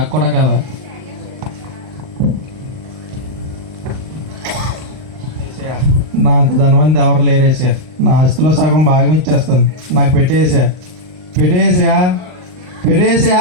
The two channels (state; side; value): late; left; 39 ms